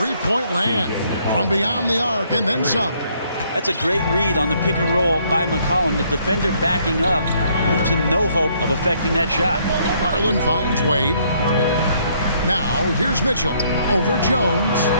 land, from beyond the arc, and then some. That's a great read on the pick and roll by McCollum. The defender backing up leaves him no hope of affecting that shot. Garland finds Wade. Now, here's Mitchell over Jones.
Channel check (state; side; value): inverted; both; correlation -0.67